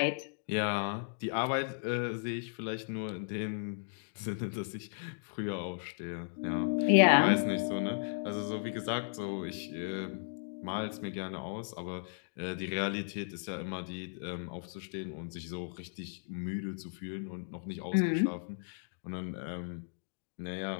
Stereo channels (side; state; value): right; silent; digital silence